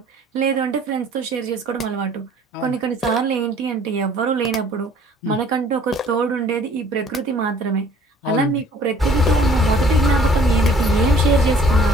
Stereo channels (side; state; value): both; normal; correlation 0.55